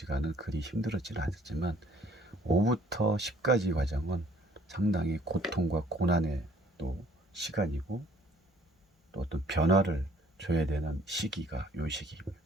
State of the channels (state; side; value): normal; both; correlation 0.59